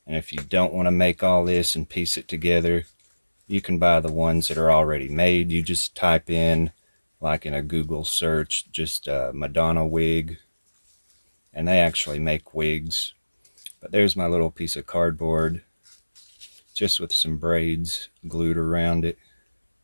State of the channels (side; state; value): both; inverted; correlation -1.00